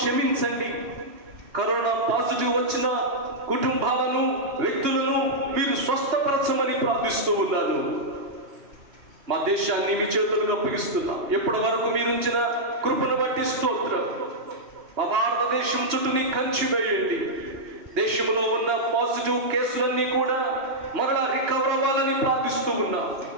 కరోనా పాజిటివ్ వచ్చిన కుటుంబాలను, వ్యక్తులను మీరు స్వస్థపరచమని ప్రార్థిస్తూ ఉన్నాను. మా దేశాన్ని మీ చేతులకు అప్పగిస్తున్నా. ఎప్పటి వరకు మీరుంచిన కృపను బట్టి స్తోత్రం. మా భారతదేశం చుట్టూ నీ కంచి వేయండి. దేశంలో ఉన్న పాజిటివ్ కేసులన్నీ కూడా మరలా రికవర్ అవ్వాలని ప్రార్థిస్తూ ఉన్నా.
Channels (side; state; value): left; late; 2.8 ms